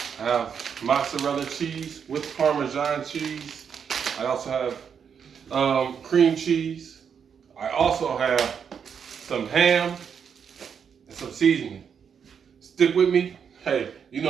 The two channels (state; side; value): quieter; left; 7.1 dB